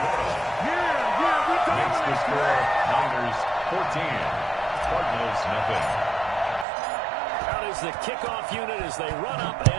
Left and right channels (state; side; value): drops out; left; at 6.7 s